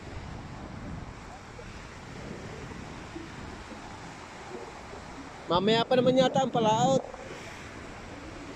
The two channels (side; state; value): both; identical; correlation 1.00